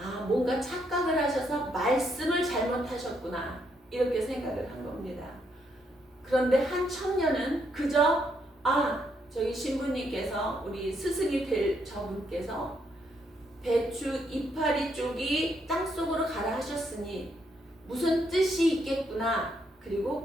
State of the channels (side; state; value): both; normal; correlation 0.75